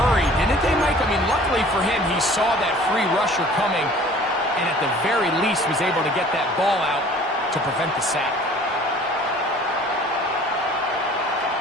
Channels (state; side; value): normal; both; correlation 0.49